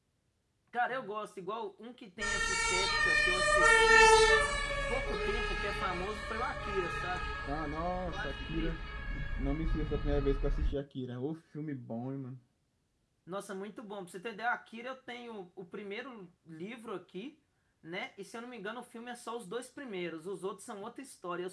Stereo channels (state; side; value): identical; both; correlation 1.00